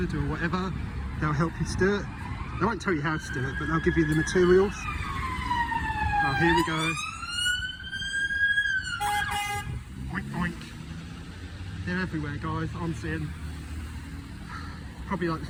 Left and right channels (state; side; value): identical; both; correlation 1.00